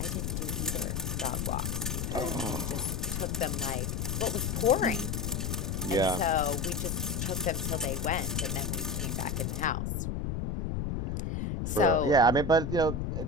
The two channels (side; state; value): left; noise; rumble, 1 dB below the sound